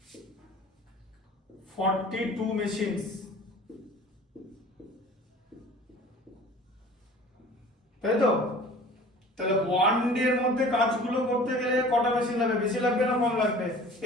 42 মেশিনস, তাই তো। তাহলে 1 ডে এর মধ্যে কাজগুলো করতে গেলে কটা মেশিন লাগবে, বেশি লাগবে না কম লাগবে?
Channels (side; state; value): both; normal; correlation 0.45